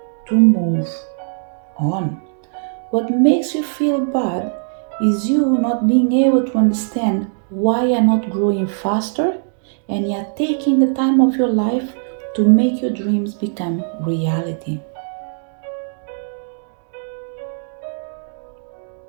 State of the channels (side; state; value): left; silent; digital silence